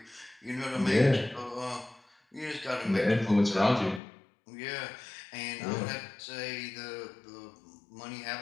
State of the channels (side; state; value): right; drops out; at 4.0 s